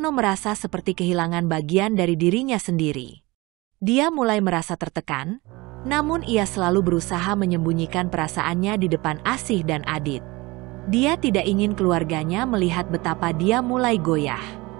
merasa seperti kehilangan bagian dari dirinya sendiri. Dia mulai merasa tertekan, namun ia selalu berusaha menyembunyikan perasaannya di depan Asih dan Adit. Dia tidak ingin keluarganya melihat betapa dia mulai goyah.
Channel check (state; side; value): quieter; left; 22.7 dB